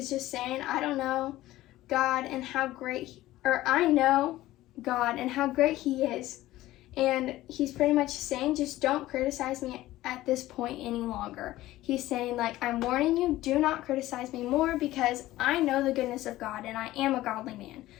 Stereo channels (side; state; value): right; quieter; 16.1 dB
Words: just saying, I know God and how great he is. And he's pretty much saying, just don't criticize me at this point any longer. He's saying, I'm warning you, do not criticize me more, because I know the goodness of God and I am a godly man.